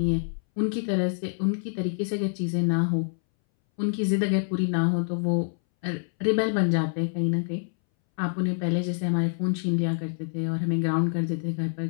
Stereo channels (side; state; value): right; silent; 61 dB below the other